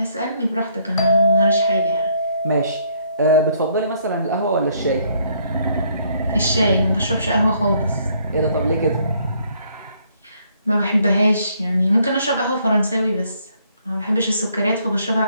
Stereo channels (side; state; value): both; inverted; correlation -0.68